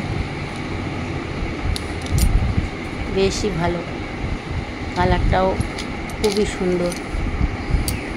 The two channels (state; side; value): identical; both; correlation 1.00